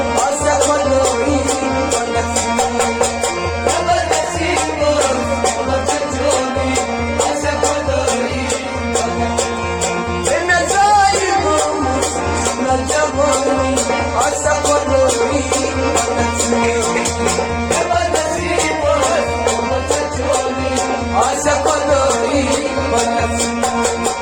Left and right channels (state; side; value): identical; both; correlation 1.00